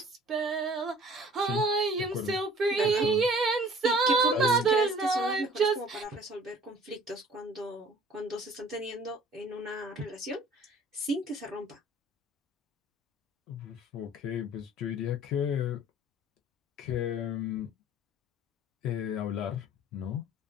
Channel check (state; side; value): normal; both; correlation 0.51